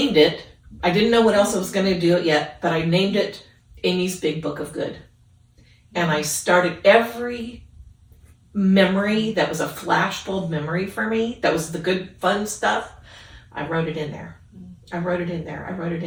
it. I didn't know what else I was going to do it yet, but I named it Amy's Big Book of Good. And I started every memory that was a flashbulb memory for me, that was the good, fun stuff, I wrote it in there. I wrote it in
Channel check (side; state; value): both; identical; correlation 1.00